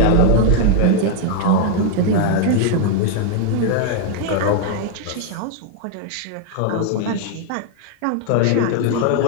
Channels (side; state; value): both; different; correlation 0.00